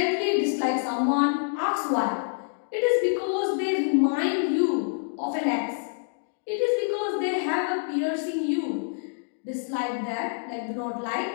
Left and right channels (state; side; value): silent; right; digital silence